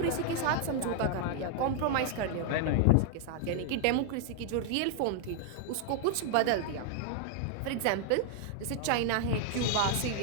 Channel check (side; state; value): both; different; correlation 0.00